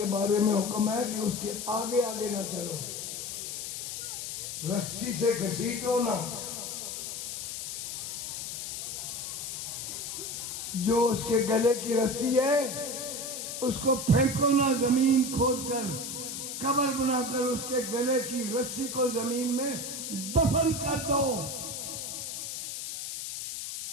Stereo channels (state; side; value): noise; left; hiss, 5 dB below the sound